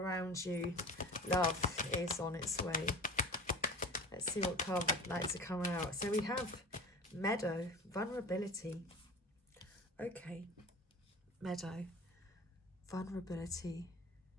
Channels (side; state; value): both; normal; correlation 0.36